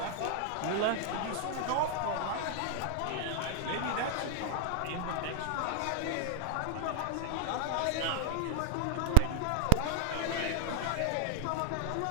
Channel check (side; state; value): both; different; correlation 0.00